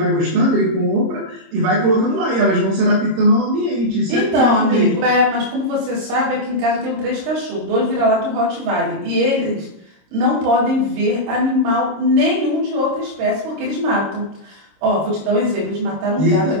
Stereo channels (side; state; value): left; late; 26 ms